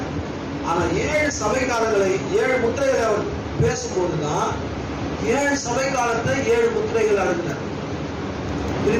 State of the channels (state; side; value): identical; both; correlation 1.00